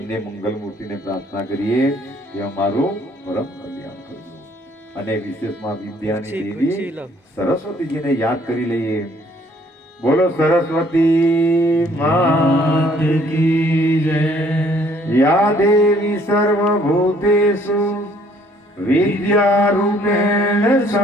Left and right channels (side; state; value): both; normal; correlation 0.62